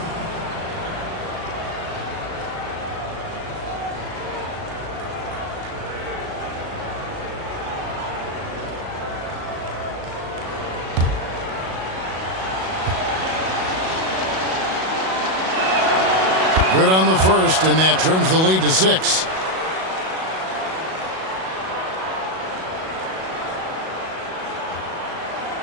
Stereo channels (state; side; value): late; left; 37 ms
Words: Good on the first, and that trims the lead to 6.